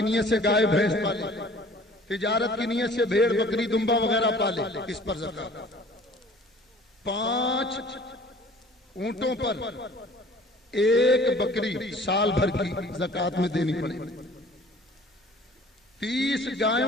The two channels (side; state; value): both; normal; correlation 0.50